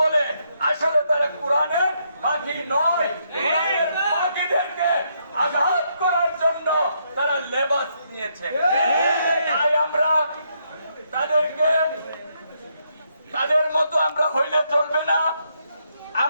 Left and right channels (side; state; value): both; inverted; correlation -0.76